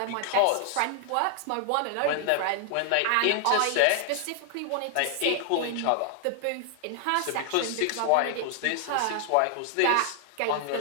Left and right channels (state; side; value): different; both; correlation 0.00